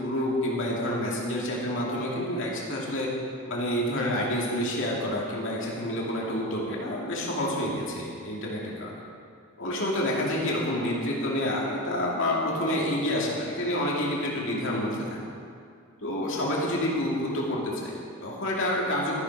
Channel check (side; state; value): both; normal; correlation 0.23